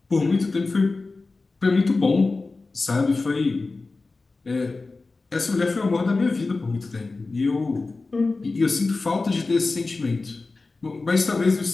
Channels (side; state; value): right; quieter; 3.6 dB